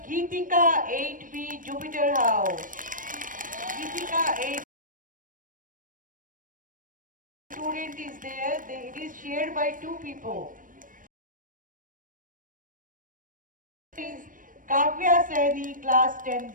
Geetika 8B Jupiter House. Geetika 8 student is there. It is shared by two people. Is Kavya Saini class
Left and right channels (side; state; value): left; late; 0.39 ms